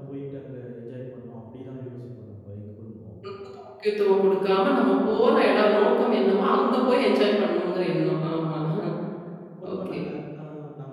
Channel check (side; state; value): both; identical; correlation 1.00